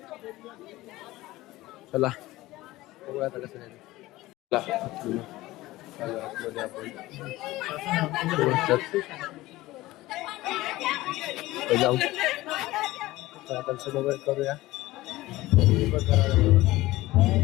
चला बघूया आता कसं आहे. जाऊ दर्शन वगैरे करूया.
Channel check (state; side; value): quieter; right; 18.0 dB